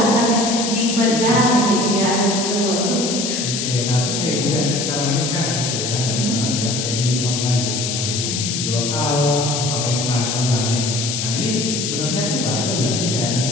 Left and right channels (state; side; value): noise; left; hiss, 2 dB below the sound